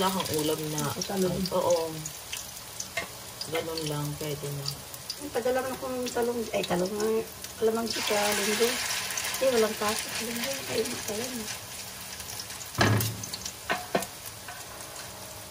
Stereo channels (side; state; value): both; identical; correlation 1.00